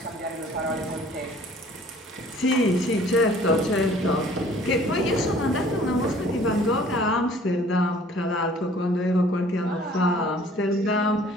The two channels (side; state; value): both; normal; correlation 0.53